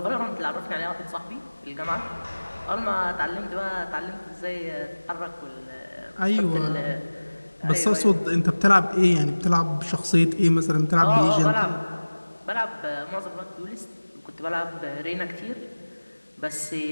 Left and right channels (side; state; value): both; inverted; correlation -1.00